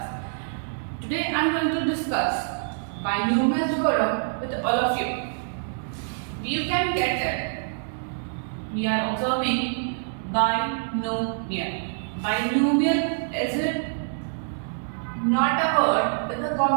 Today I'm going to discuss binomial theorem with all of you. You can get it. We are observing binomial. Binomial is it not a word, it's a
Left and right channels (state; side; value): silent; left; digital silence